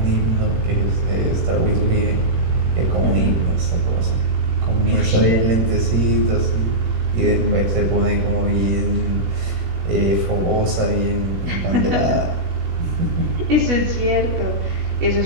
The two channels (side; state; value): left; late; 17 ms